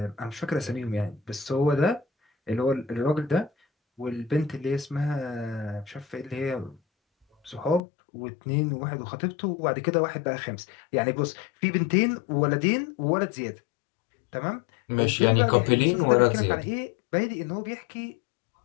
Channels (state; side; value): drops out; right; at 7.8 s